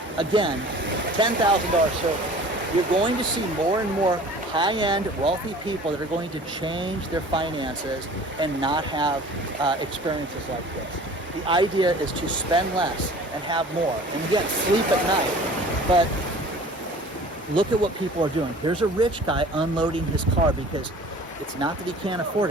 Again, $10,000 service. You're going to see more and more high-end, wealthy people that are going to change their finances and not have experiences like this. The idea is to spend less and have more. And again, sleep at night. But look at what people are doing. Here's a rich guy unloading his car because it's not that he can't afford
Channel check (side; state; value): both; normal; correlation 0.45